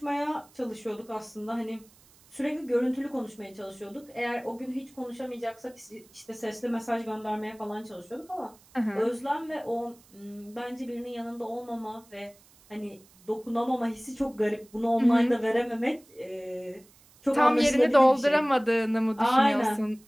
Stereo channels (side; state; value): right; noise; hiss, 28 dB below the sound